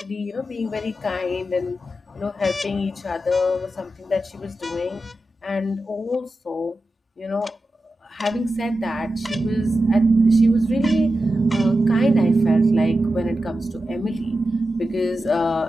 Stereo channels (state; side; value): normal; both; correlation 0.91